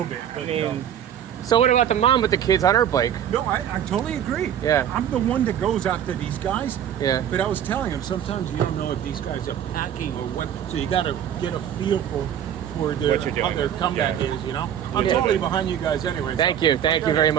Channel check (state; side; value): quieter; left; 9.7 dB